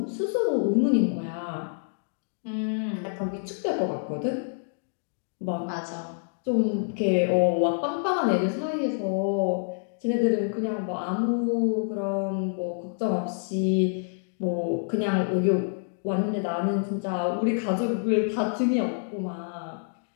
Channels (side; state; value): right; silent; digital silence